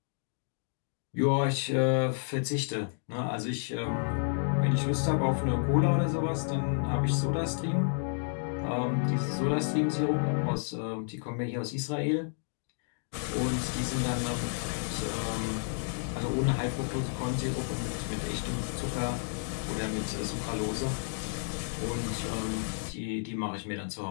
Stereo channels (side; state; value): right; silent; digital silence